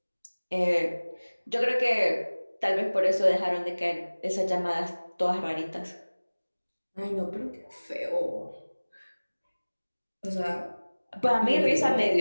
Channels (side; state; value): both; inverted; correlation -1.00